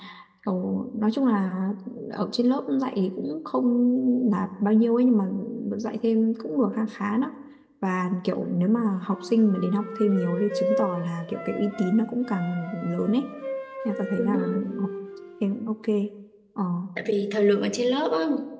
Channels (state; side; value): identical; both; correlation 1.00